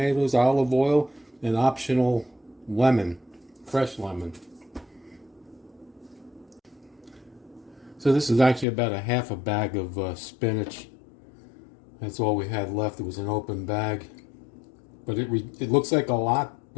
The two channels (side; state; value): right; drops out; at 8.7 s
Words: olive oil, and optional lemon, fresh lemon. So this is actually about a half a bag of spinach. That's all we had left. It was an open bag. But it looks like a lot,